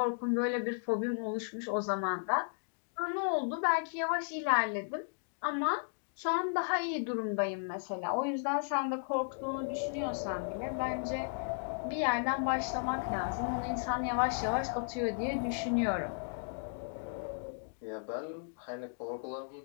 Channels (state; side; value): silent; right; digital silence